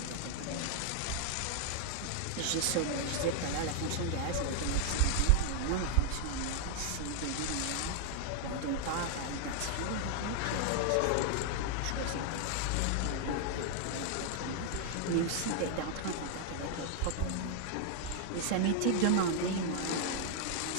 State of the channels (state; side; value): different; both; correlation 0.00